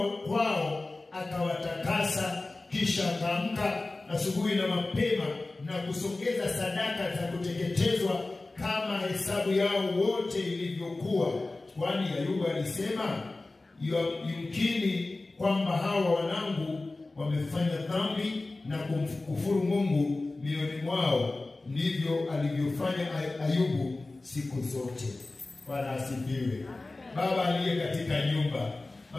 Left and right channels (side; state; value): right; quieter; 3.2 dB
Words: kwao akawatakasa, kisha akaamka asubuhi na mapema na kusongeza sadaka za kuteketezwa kama hesabu yao wote ilivyokuwa. Kwani Ayubu alisema, yumkini kwamba hawa wanangu wamefanya dhambi na kumkufuru Mungu mioyoni mwao. Ndivyo alivyofanya Ayubu siku zote. Bwana asifiwe. Baba aliye katika nyumba,